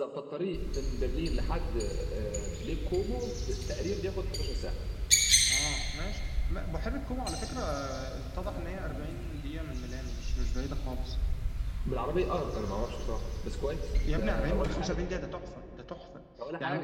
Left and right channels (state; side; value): identical; both; correlation 1.00